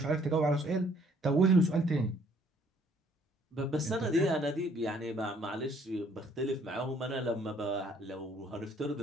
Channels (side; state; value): both; normal; correlation 0.63